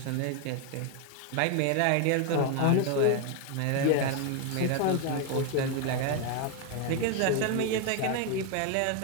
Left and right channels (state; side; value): different; both; correlation 0.01